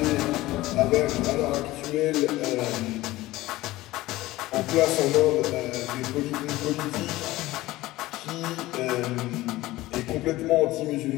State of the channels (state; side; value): quieter; right; 17.8 dB